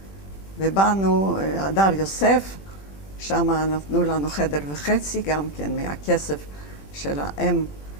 ובאנו הדר יוסף, שם נתנו לנו חדר וחצי, גם כן מהכסף של האם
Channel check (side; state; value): right; late; 20 ms